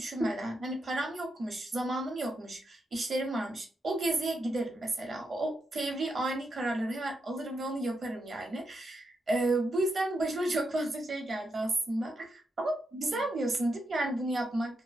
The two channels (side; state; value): both; normal; correlation 0.84